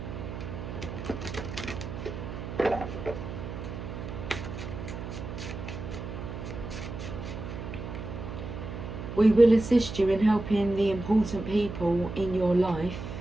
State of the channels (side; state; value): right; noise; hum, 8 dB below the sound